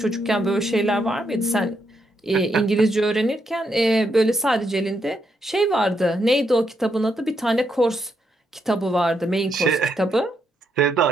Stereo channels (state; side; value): normal; both; correlation 0.79